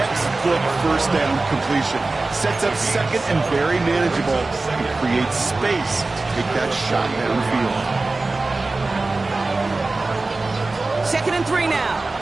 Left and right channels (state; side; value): quieter; left; 3.4 dB